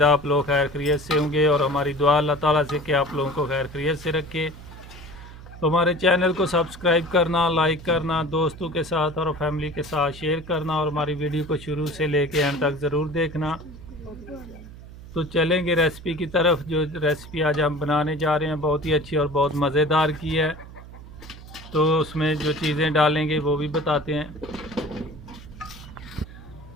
आप लोग खैर खैरियत से होंगे और हमारी दुआ अल्लाह ताला से कि आप लोगों को खैर खैरियत से रखे। तो हमारे चैनल को सब्सक्राइब करना, लाइक करना, दोस्तों के साथ और फैमिली के साथ शेयर करना और हमारी वीडियो को शुरू से लेके एंड तक ज़रूर देखना। तो चलेंगे रेसिपी की तरफ। जो रेसिपी आज हम बनाने जा रहे हैं बहुत ही अच्छी और बहुत मज़ेदार की है, तो उसमें जो चीज़ें डालेंगे वो भी बताते हैं।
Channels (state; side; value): noise; right; hum, 16 dB below the sound